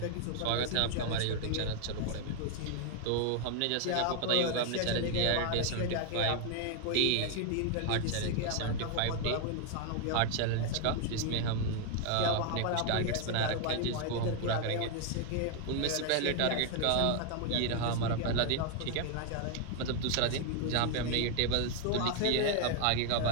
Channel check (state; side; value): different; both; correlation 0.01